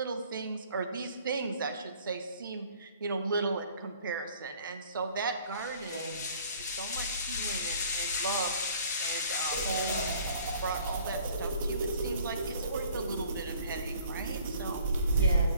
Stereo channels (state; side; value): inverted; both; correlation -0.56